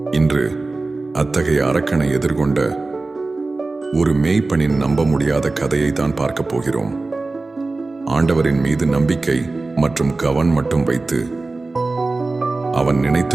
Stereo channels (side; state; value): left; quieter; 3.4 dB